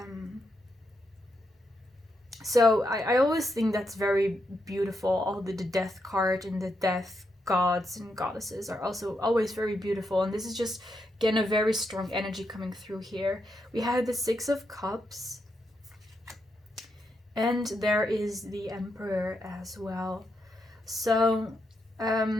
So I always think that's very beautiful. All the death card and the death gods and goddesses are also always very beautiful. And this is just, again, a very strong energy coming through here. We have the Six of Cups. And there is the Emperor as well. So,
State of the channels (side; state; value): both; normal; correlation 0.82